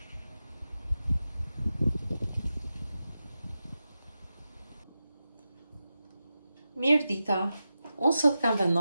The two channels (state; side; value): inverted; both; correlation -0.91